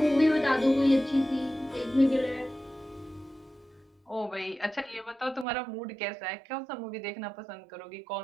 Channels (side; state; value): left; drops out; at 5.5 s